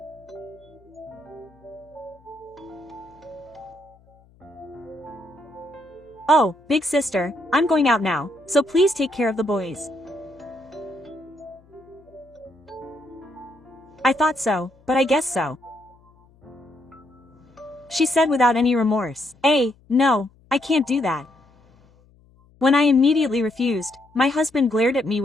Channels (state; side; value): noise; left; hum, 30 dB below the sound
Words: Oh, big sister, I'm going out now, so please take care of the boys. I thought so, but I guess so, she said without any remorse. No, I can't do that. When I immediately refused, my husband glared at me